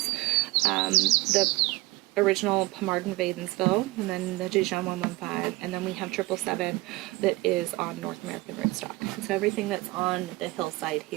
The original Pommardin Vadensville, and then the Dijon 115, and then we have 777 that is on North American rootstock. So everything that's on the hillside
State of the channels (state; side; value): quieter; left; 21.3 dB